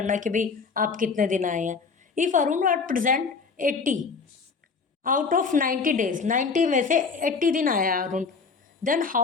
कि भाई आप कितने दिन आए हैं. If Arun are present 80 out of 90 days, 90 में से 80 दिन आया है Arun, then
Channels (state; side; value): quieter; right; 5.0 dB